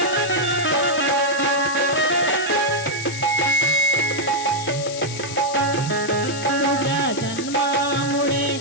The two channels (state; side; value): noise; left; hiss, 9 dB below the sound